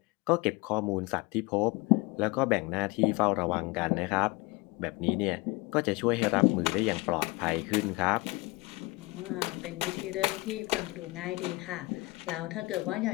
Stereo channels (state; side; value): quieter; right; 23.5 dB